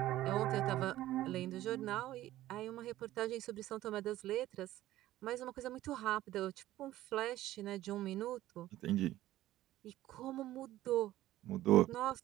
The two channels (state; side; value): quieter; left; 14.9 dB